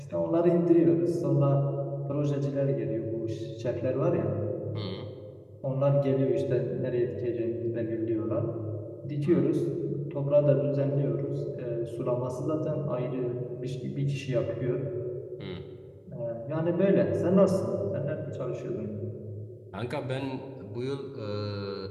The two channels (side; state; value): both; identical; correlation 1.00